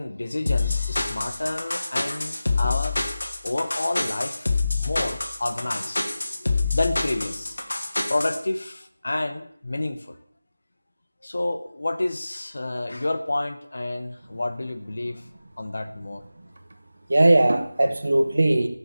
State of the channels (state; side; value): inverted; both; correlation -0.95